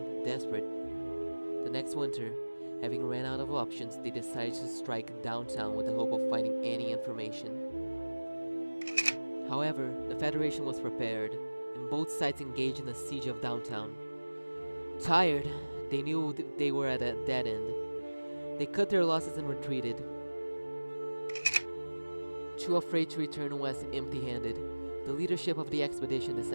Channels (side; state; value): both; inverted; correlation -1.00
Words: desperate. The next winter, having ran out of options, they decided to strike downtown with the hope of finding any information. However, the Federation was prepared, and both sides engaged in the siege of downtown. Tired, they knew they were at a dead end. They cut their losses and retreated. Too afraid to return west empty-handed, the leadership of the expedition